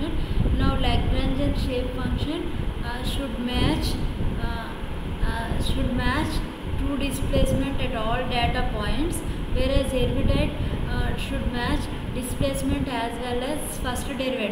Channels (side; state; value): both; identical; correlation 1.00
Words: Now Lagrangian shape function should match true displacement at all data points, whereas Hermite should match displacement as well as first